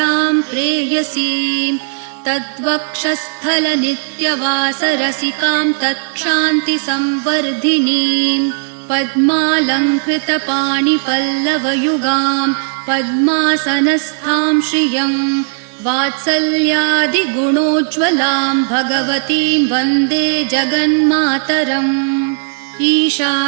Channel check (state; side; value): silent; left; digital silence